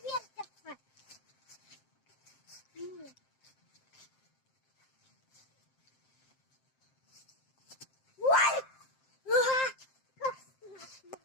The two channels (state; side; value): late; right; 7.6 ms